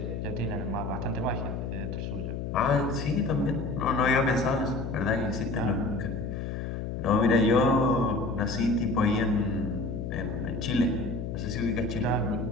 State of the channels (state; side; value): noise; left; hum, 4 dB below the sound